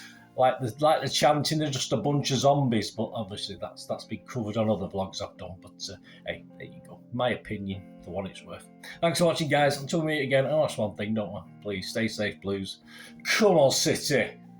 Like the chanting, they're just a bunch of zombies, but obviously that's been covered on other vlogs I've done. But hey, there you go. My opinion, for what it's worth. Thanks for watching, guys. Until we meet again, that's one thing, don't I? Please stay safe, Blues. Come on, City.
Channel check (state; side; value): identical; both; correlation 1.00